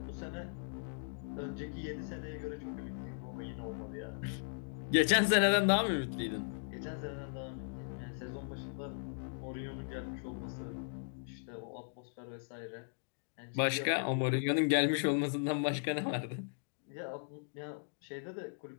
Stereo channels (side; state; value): right; silent; digital silence